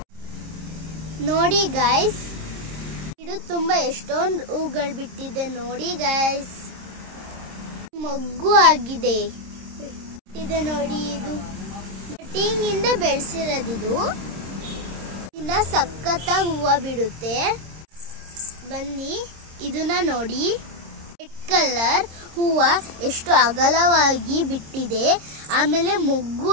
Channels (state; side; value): late; left; 26 ms